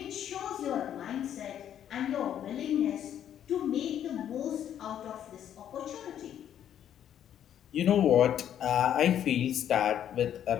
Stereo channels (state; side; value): quieter; right; 10.1 dB